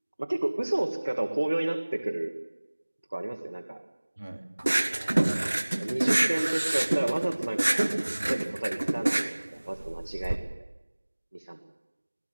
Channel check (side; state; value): both; inverted; correlation -1.00